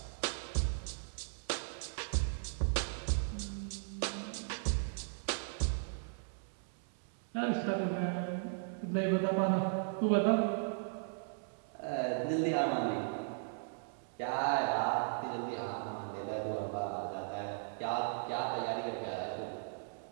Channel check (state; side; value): silent; left; digital silence